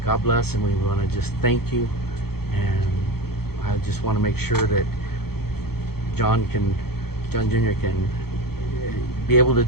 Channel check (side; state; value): right; late; 0.96 ms